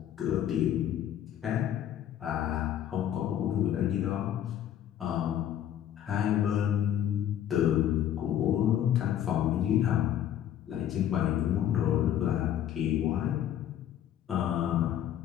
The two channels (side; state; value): right; quieter; 10.7 dB